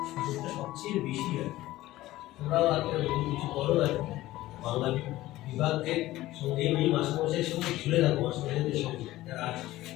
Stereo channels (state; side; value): quieter; right; 16.5 dB